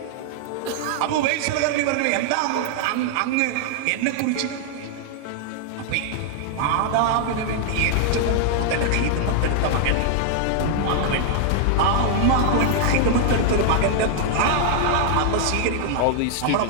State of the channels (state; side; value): different; both; correlation -0.01